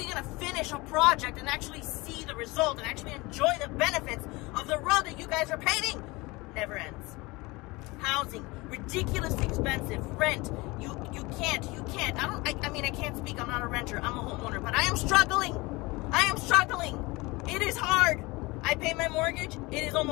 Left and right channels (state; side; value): quieter; right; 23.3 dB